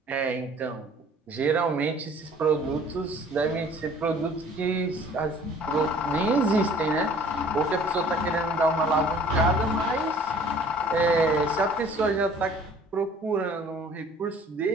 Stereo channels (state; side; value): normal; both; correlation 0.51